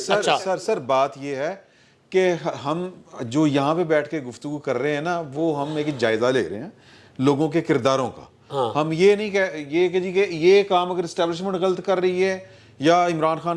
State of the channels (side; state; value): both; identical; correlation 1.00